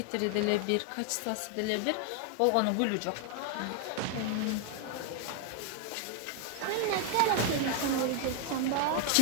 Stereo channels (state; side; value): different; both; correlation 0.00